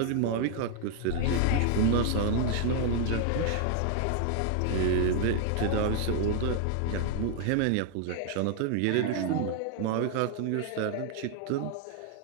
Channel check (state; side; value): different; both; correlation 0.00